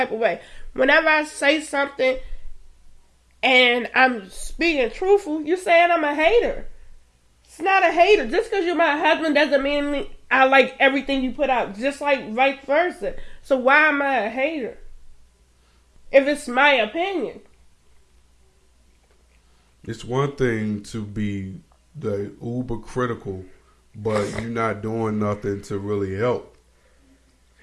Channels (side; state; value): both; identical; correlation 1.00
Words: of way. Whenever I say something and I'm speaking truthful, you're saying I'm a hater. It's not a hater. Just because you're my husband doesn't mean I like everything you put out. Just like vice versa. So why am I a hater? If it's my opinion. It's one thing to be the uber critical, but you're not doing nothing to really help.